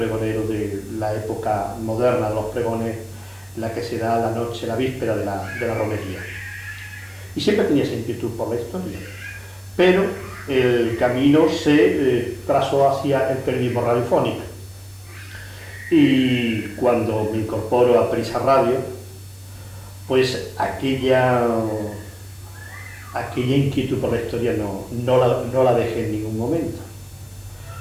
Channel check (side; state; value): both; identical; correlation 1.00